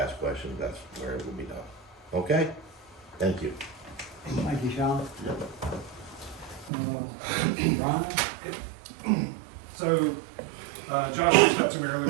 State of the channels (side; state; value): left; drops out; at 6.7 s